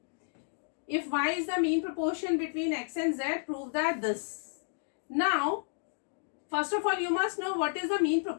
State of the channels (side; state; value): right; silent; digital silence